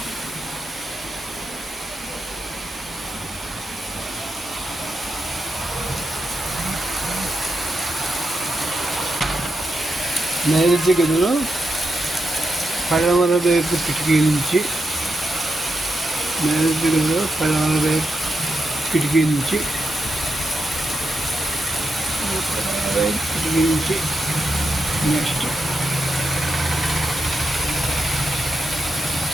నైరుతి గదిలో పడమర వైపు కిటికీ నుంచి. నైరుతి గదిలో పడమర వైపు కిటికీ నుంచి. నెక్స్ట్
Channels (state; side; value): normal; both; correlation 0.86